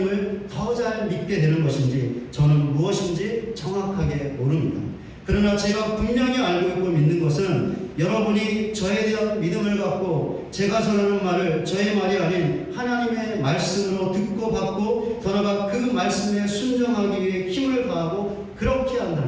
더 잘 믿게 되는 것인지 저는 무엇인지 정확하게 모릅니다. 그러나 제가 분명히 알고 있고 믿는 것은 여러분이 저에 대한 믿음을 갖고 제가 전하는 말을 저의 말이 아닌 하나님의 말씀으로 듣고 받고 더 나아가 그 말씀에 순종하기 위해 힘을 다하고 그렇게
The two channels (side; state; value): both; identical; correlation 1.00